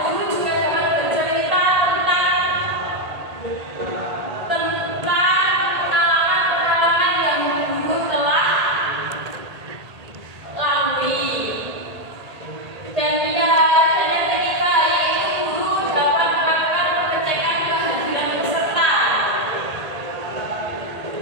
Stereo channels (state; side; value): late; left; 1.8 ms